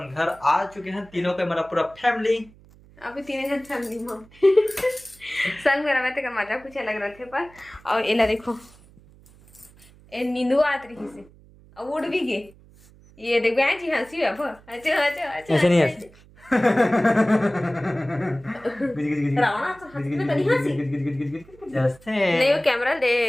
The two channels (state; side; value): noise; right; hum, 25 dB below the sound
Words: घर आ चुके हैं तीनों के मेरा पूरा फैमिली अभी 3 जन फैमिली में संग मेरा में तो मजा कुछ अलग रहे थे पर और एला देखो ए नींदू आत रही से अब उड़ भी गए ये देखो यहाँ जी हंसी है अच्छा अच्छा अच्छा ऐसे नहीं हंसी रावणा तो हंसते तो नहीं हंसी नहीं वो कैमरा